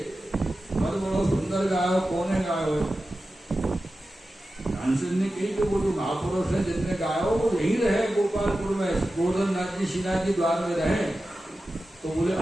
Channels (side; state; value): both; normal; correlation 0.93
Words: बहुत बड़ा सुंदर गायो, कौन गायो? तानसेन ने कही कि वो जो महापुरुष है जिसने गायो वो यही रहे गोपालपुर में, गोवर्धन नाथ जी श्रीनाथ जी द्वार में रहे। तो बोले